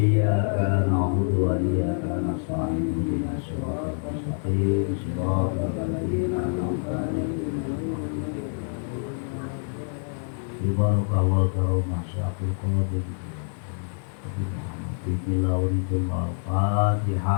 na'budu wa iyyaka nasta'in ihdinas siratal mustaqim siratal ladzina an'amta 'alaihim Barakallahu karomah syafil qadir Nabi Muhammad Bismillah waritul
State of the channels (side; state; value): right; silent; digital silence